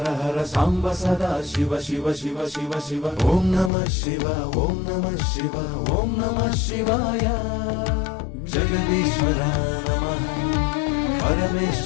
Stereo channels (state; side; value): drops out; right; at 3.7 s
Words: हर सांब सदा शिव शिव शिव शिव शिव ओम नमः शिवाय ओम नमः शिवाय ओम नमः शिवाय जगदीश्वरा नमः